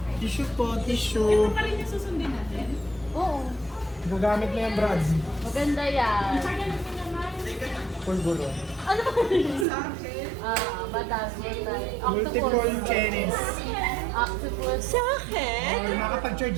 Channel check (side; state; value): left; drops out; at 9.7 s